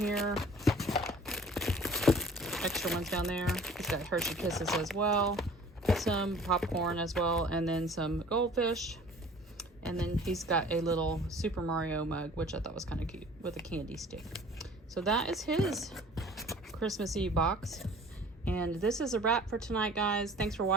Extra ones down there. He's got Hershey Kisses as well. Some popcorn as well. And then some goldfish. And then he's got a little Super Mario mug, which I thought was kind of cute, with a candy stick. So that is his Christmas Eve box. And this is a wrap for tonight, guys. Thanks for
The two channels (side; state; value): both; normal; correlation 0.49